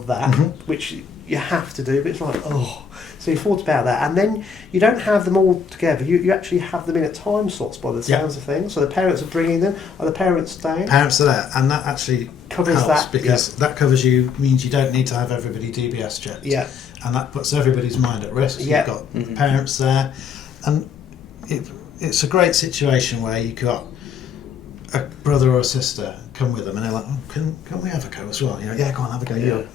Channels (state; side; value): quieter; right; 6.5 dB